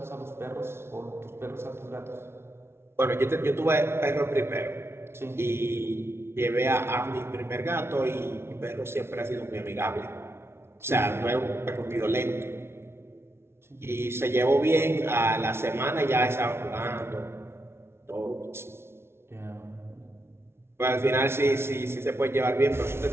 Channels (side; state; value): left; late; 0.12 ms